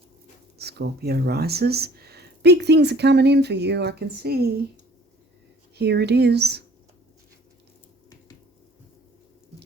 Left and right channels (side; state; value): both; normal; correlation 0.52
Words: Scorpio rises. Big things are coming in for you, I can see. Here it is.